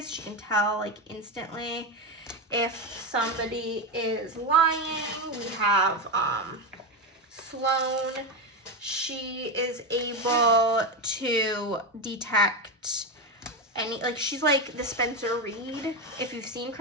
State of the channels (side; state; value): both; normal; correlation 0.13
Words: She can tell like instantly if somebody is lying. We have Sloane. She is able to detect any, like, she's like the Spencer Reed, if you've seen